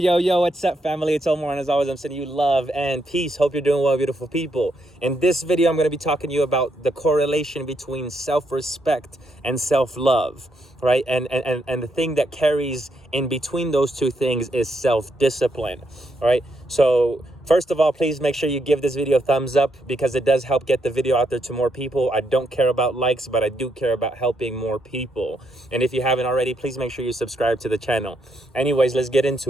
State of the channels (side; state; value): both; normal; correlation 0.78